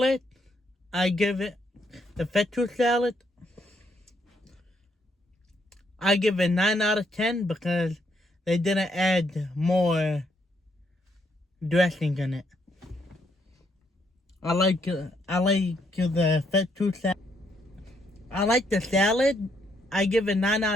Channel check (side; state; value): both; normal; correlation 0.73